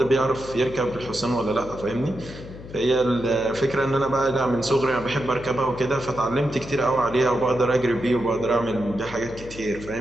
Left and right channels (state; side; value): noise; left; hum, 15 dB below the sound